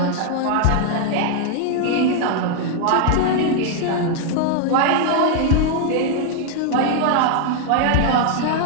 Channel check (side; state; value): both; different; correlation 0.00